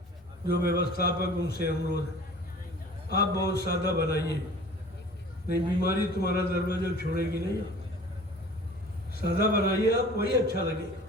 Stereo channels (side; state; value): both; normal; correlation 0.45